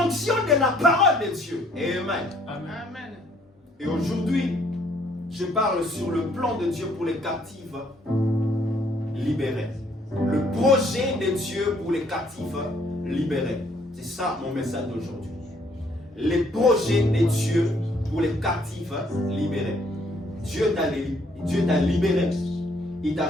fonction de la parole de Dieu. Amen. Amen. Et aujourd'hui, je parle sur le plan de Dieu pour les captifs libérés. Le projet de Dieu pour les captifs libérés. C'est ça mon message d'aujourd'hui. Les projets de Dieu pour les captifs libérés. Dieu t'a libéré. Il t'a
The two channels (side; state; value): both; normal; correlation 0.65